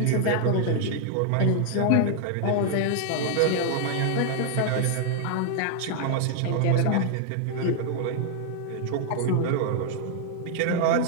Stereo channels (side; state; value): both; different; correlation 0.00